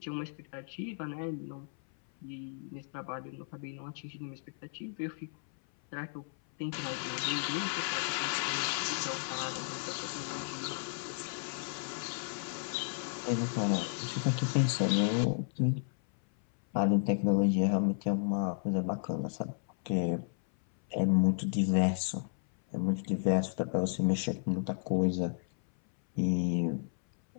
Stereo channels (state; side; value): silent; right; 56 dB below the other